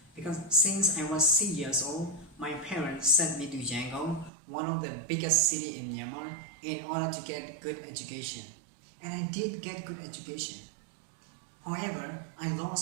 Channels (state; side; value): drops out; left; at 4.3 s